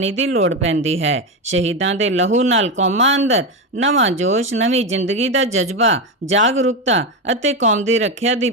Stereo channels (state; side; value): normal; both; correlation 0.13